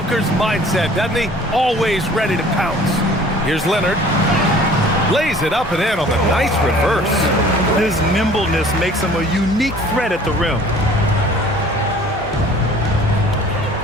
mindset, doesn't he? Always ready to pounce. Here's Leonard. Lays it up and in on the nice reverse. His nimbleness makes him a unique threat at the rim.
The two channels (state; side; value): normal; both; correlation 0.50